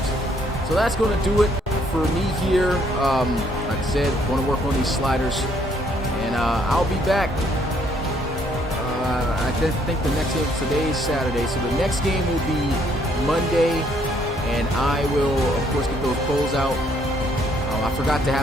So that's going to do it for me here. Like I said, going to work on these sliders. And I'll be back. I think the next game, today is Saturday, so the next game will be Monday. And I will, of course, get those polls out. I forgot to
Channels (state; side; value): normal; both; correlation 0.67